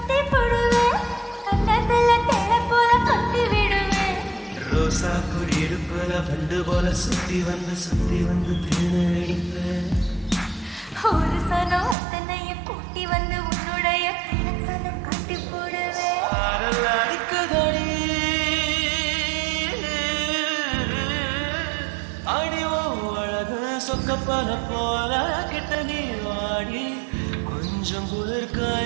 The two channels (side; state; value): left; drops out; at 12.0 s